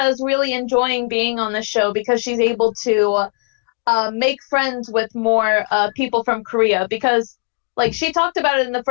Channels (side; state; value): right; quieter; 39.6 dB